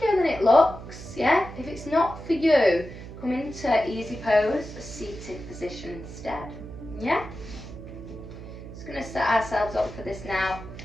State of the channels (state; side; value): noise; right; hum, 13 dB below the sound